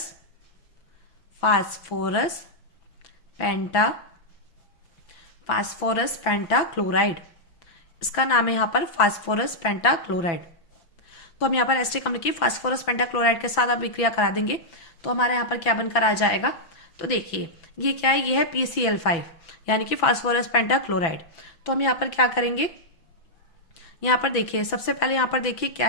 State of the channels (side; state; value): right; late; 6.0 ms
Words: पेंटाक्लोराइड। इसका नाम है यहाँ पर फास्फोरस पेंटाक्लोराइड। तो हम यहाँ पर एसिटिक अम्ल की फास्फोरस पेंटाक्लोराइड के साथ अभिक्रिया करा देंगे। तो हमारे यहाँ पर क्या बनकर आ जाएगा, तो देखिए ये क्या है, ये है PCl5 यानी कि फास्फोरस पेंटाक्लोराइड। तो हम यहाँ पर क्या करेंगे, यहाँ पर देखिए सबसे पहले यहाँ पर देखिए क्या